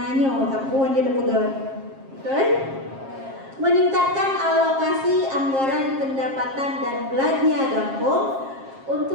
kapuan dia pegang, betul? Meningkatkan alokasi anggaran pendapatan dan belanja kampung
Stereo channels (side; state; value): left; late; 7.5 ms